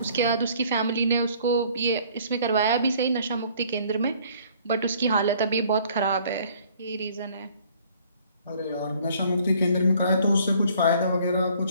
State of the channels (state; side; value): inverted; both; correlation -0.58